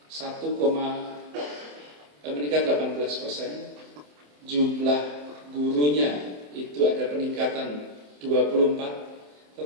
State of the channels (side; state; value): left; late; 27 ms